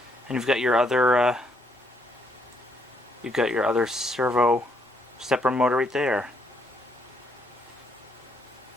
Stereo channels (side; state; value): both; normal; correlation 0.72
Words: And you've got your other servo stepper motor right there.